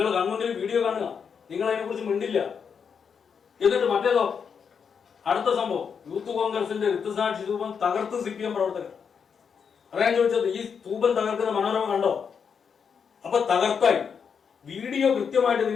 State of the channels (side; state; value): right; quieter; 6.6 dB